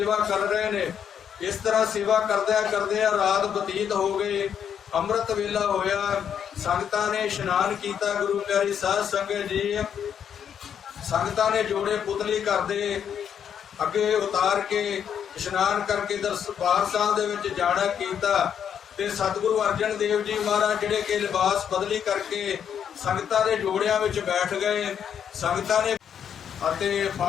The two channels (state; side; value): quieter; right; 8.4 dB